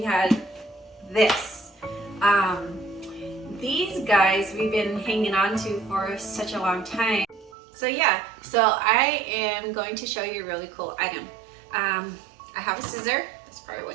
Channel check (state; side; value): drops out; left; at 7.6 s